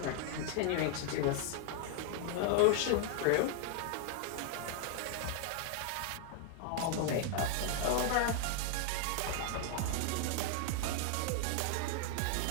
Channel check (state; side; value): different; both; correlation 0.00